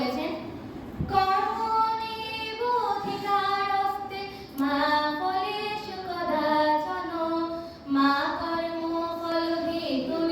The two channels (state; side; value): identical; both; correlation 1.00